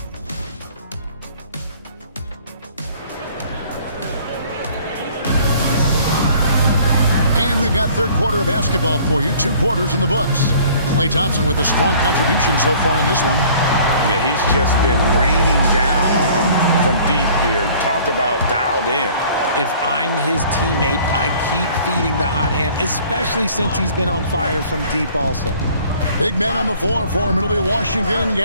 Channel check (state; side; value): inverted; both; correlation -0.53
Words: And we've got third quarter of basketball for you. 2 quarters in the books. Klay Thompson with a strong contribution so far in this one. Yeah, he's just been raining down on him from deep here. Talk about dialed in. If I'm his teammate, I keep feeding the hot hand, especially since he's been on fire from deep also. Big men on the floor for him. It'll be Washington and